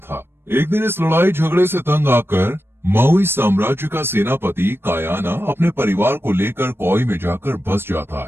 एक दिन इस लड़ाई झगड़े से तंग आकर माउई साम्राज्य का सेनापति कायाना अपने परिवार को लेकर कोई में जाकर बस जाता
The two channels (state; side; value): late; left; 0.11 ms